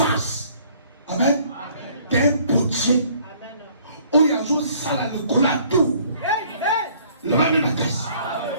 Amen. D'un potier. Où il y a une salle à l'école à tout. Le mal de ma caisse.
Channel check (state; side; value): inverted; both; correlation -0.59